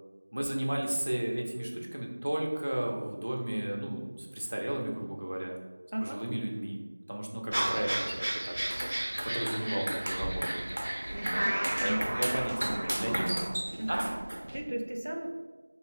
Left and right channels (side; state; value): both; inverted; correlation -1.00